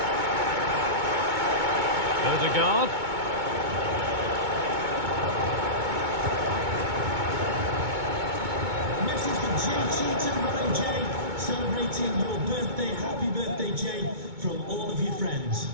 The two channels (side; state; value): left; late; 2.2 ms